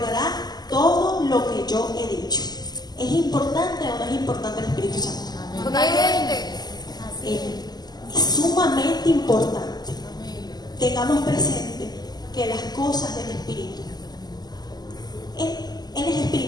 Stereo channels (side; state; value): right; late; 0.20 ms